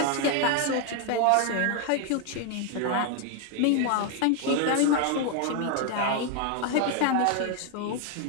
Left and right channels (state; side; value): different; both; correlation 0.01